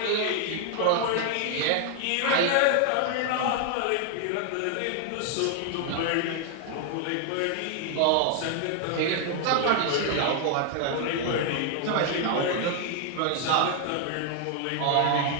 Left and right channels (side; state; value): both; different; correlation 0.00